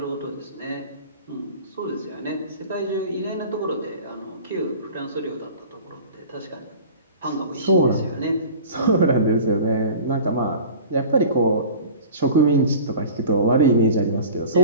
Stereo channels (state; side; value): inverted; both; correlation -0.40